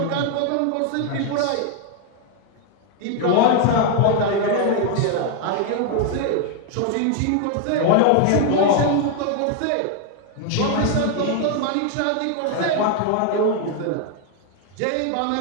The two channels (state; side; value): different; both; correlation 0.00